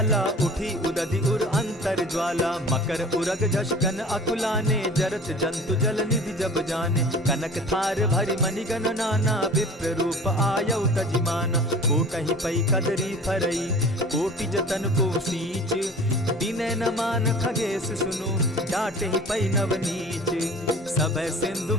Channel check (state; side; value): normal; both; correlation 0.43